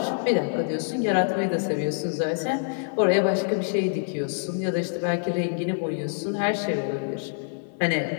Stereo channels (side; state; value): right; silent; digital silence